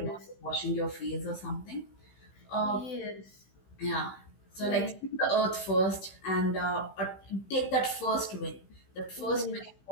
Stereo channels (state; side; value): late; right; 16 ms